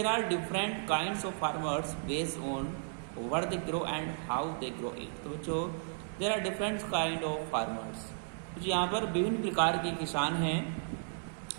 are different kinds of farmers based on what they grow and how they grow it। तो बच्चों there are different kind of farmers। तो यहाँ पर विभिन्न प्रकार के किसान हैं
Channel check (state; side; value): silent; left; digital silence